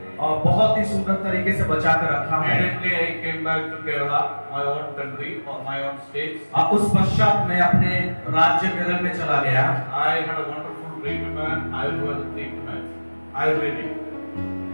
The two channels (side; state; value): both; inverted; correlation -1.00